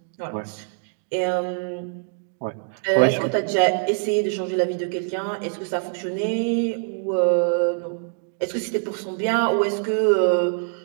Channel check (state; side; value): silent; left; 59 dB below the other